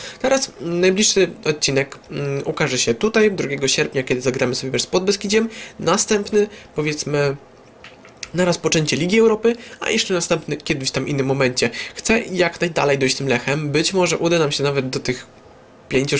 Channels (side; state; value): both; identical; correlation 1.00